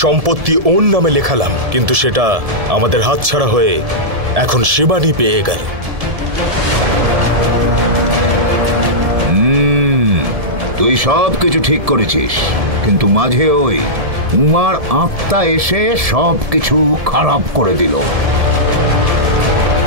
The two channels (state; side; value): late; left; 1.7 ms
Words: সম্পত্তি ওর নামে লেখালাম, কিন্তু সেটা আমাদের হাতছাড়া হয়ে এখন শিবানী পেয়ে গেল। তুই সব কিছু ঠিক করেছিস, কিন্তু মাঝে ওই উমার আত্মা এসে সব কিছু খারাপ করে দিল।